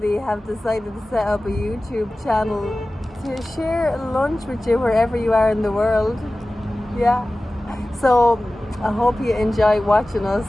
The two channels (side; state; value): both; normal; correlation 0.97